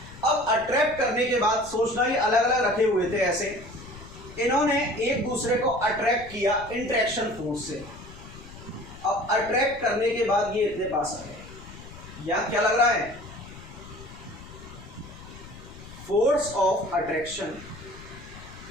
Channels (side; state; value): left; noise; rumble, 16 dB below the sound